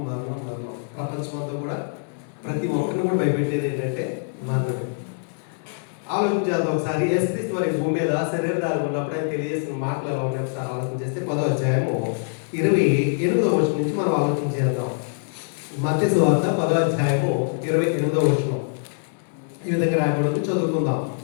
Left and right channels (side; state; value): right; silent; digital silence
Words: మరణం మరణం ప్రపంచమంతా కూడా ప్రతి ఒక్కరిని కూడా భయపెట్టేది ఏంటంటే మరణమే. ఆలోచించేద్దాం ఒకసారి. యేసుక్రీస్తు వారి భూమి మీద శరీరధారి ఉన్నప్పుడు ఆయన తెలియజేసిన మాటలు ఎలా ఉన్నాయి ఒకసారి ఆలోచన చేస్తే 10వ అధ్యాయము 28వ వచనం నుంచి మనం ఆలోచన చేద్దాం. మత్తయి సువార్త 10వ అధ్యాయము 28వ వచనం ఈ విధంగా రాయబడి చదువుకుందాం.